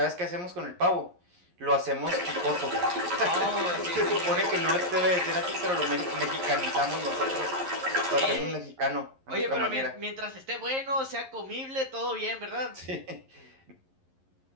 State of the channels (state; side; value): late; left; 11 ms